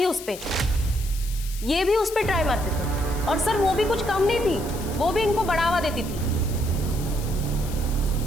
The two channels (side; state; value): left; noise; hiss, 14 dB below the sound